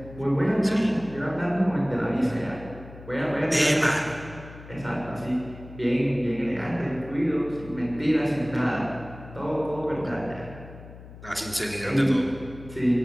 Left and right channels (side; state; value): left; noise; hum, 16 dB below the sound